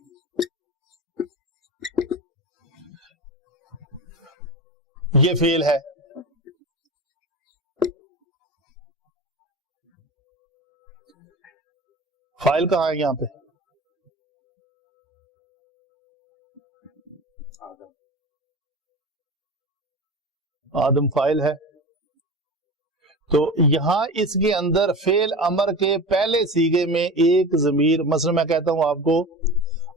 یہ فعل ہے. فائل کہاں ہے یہاں پہ؟ آدم فائل ہے. تو یہاں اس کے اندر فعل امر کے پہلے سیغے میں ایک ضمیر، مثلا میں کہتا ہوں آپ کو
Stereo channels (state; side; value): normal; both; correlation 0.30